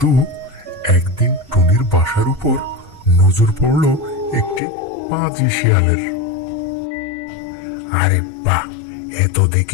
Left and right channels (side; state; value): right; drops out; at 4.6 s